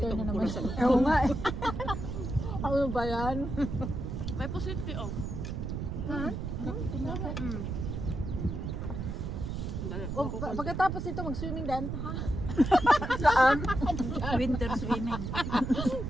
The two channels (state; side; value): noise; right; rumble, 4 dB below the sound